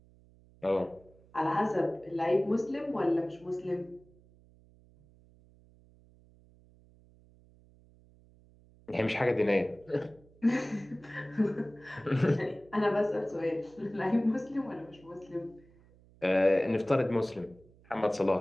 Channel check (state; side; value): noise; right; hum, 27 dB below the sound